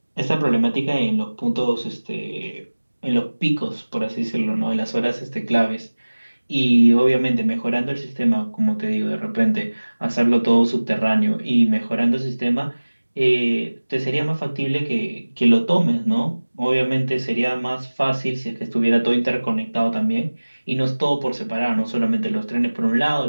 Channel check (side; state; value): both; inverted; correlation -1.00